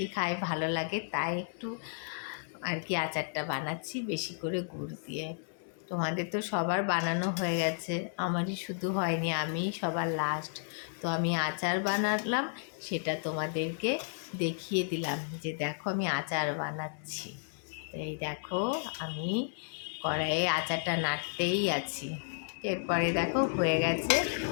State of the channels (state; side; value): silent; right; 56 dB below the other